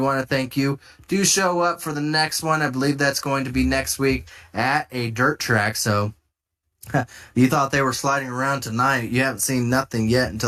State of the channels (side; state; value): both; identical; correlation 1.00